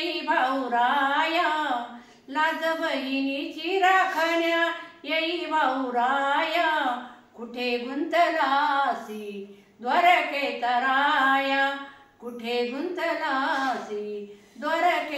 भाऊराया, लाज बहिणीची राखण्या येई भाऊराया, कुठे गुंतलासी द्वारकेचा राया, कुठे गुंतलासी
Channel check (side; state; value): both; identical; correlation 1.00